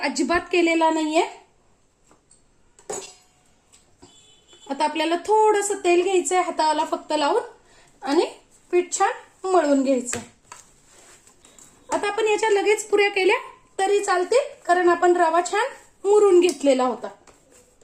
केलेला नाहीये. आता आपल्याला थोडंसं तेल घ्यायचंय हाताला फक्त लावून आणि पीठ छान मळून घ्यायचंय. आता आपण याच्या लगेच पुऱ्या केल्या तरी चालतील, कारण आपण रवा छान मुरून घेतलेला होता.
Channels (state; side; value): identical; both; correlation 1.00